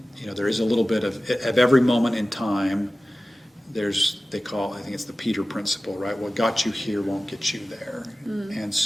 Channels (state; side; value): normal; both; correlation 0.96